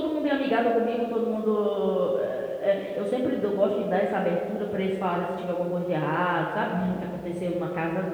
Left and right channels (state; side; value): identical; both; correlation 1.00